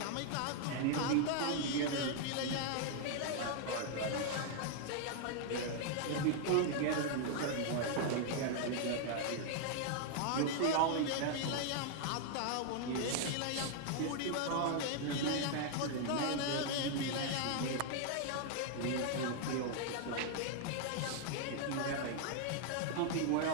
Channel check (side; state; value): both; different; correlation 0.00